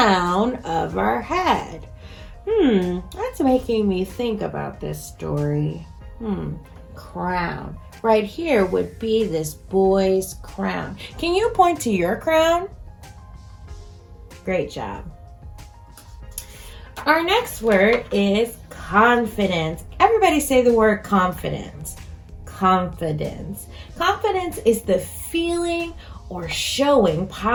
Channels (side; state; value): both; identical; correlation 1.00